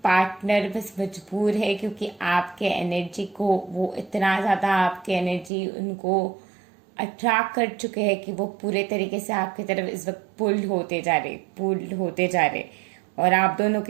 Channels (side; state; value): left; drops out; at 5.5 s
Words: पार्टनर बस मजबूर है क्योंकि आपके एनर्जी को वो इतना ज़्यादा, आपके एनर्जी उनको अट्रैक्ट कर चुके हैं कि वो पूरे तरीके से आपकी तरफ इस वक्त पुल्ड होते जा रहे और आप दोनों